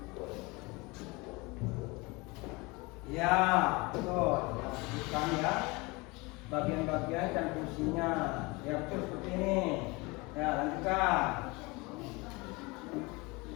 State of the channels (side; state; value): right; quieter; 25.2 dB